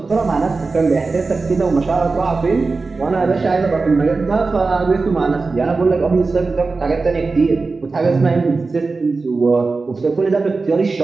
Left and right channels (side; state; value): left; quieter; 4.0 dB